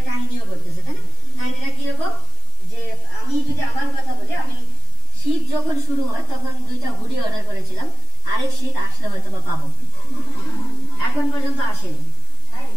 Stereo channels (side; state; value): both; normal; correlation 0.47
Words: কাহিনীও করতেছে, তাই না? কাহিনীটা কিরকম, যে আমি যদি আমার কথা বলি, আমি শীত যখন শুরু হয় তখন 2টা হুডি অর্ডার করেছিলাম, আরেক শীত আসলে হয়তো বা পাবো, এখন পর্যন্ত আসেনি।